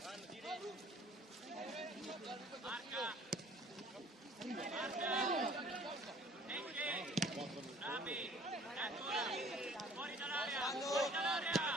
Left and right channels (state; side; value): normal; both; correlation 0.53